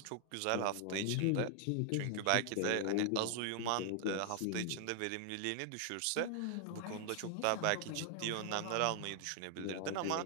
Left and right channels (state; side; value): different; both; correlation 0.00